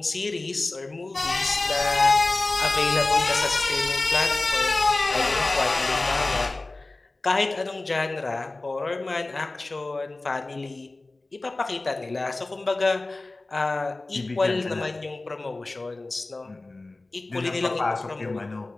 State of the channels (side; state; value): right; quieter; 3.1 dB